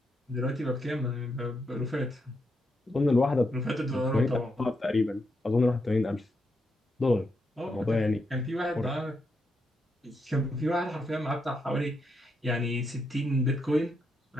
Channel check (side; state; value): both; normal; correlation 0.81